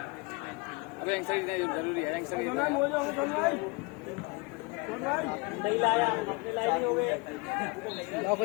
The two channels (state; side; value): quieter; right; 27.9 dB